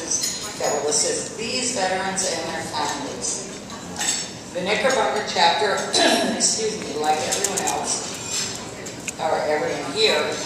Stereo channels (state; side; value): identical; both; correlation 1.00